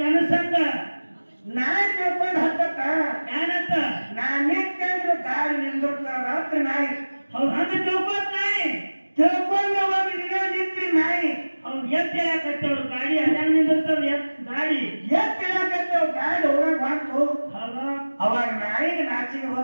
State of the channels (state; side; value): inverted; both; correlation -1.00